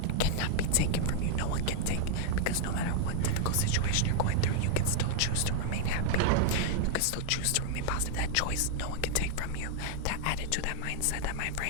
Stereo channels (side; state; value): both; different; correlation 0.00